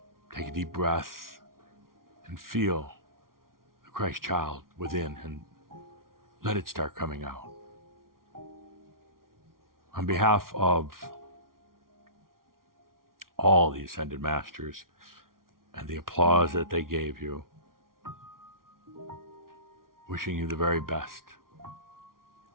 take a deep breath and feel the Christ child within and let it start coming out. On behalf of all the Ascended Masters and the applause that they gave you, wishing you the very best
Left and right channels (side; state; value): left; late; 0.92 ms